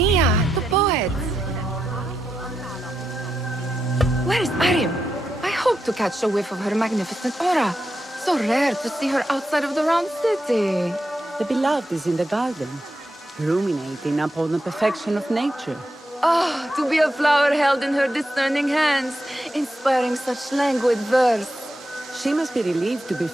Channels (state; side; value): normal; both; correlation 0.86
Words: the poet? Where is Arib? I hope to catch a whiff of her magnificent aura. So rare to see her outside of the round city. The beloved is in the garden, ruminating upon the perfection of nature. Oh, to be a flower held in her discerning hands, inspiring such languid verse. She must be relieved to be